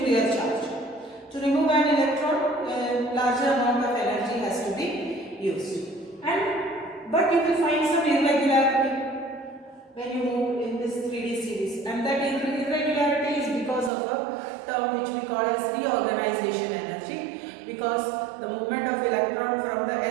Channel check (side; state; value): left; drops out; at 13.9 s